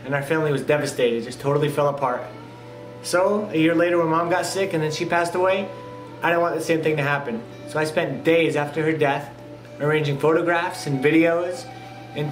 and our family was devastated, just totally fell apart. So, a year later when Mom got sick and then she passed away, I didn't want the same thing to happen. So I spent days after her death arranging photographs and videos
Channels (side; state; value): both; identical; correlation 1.00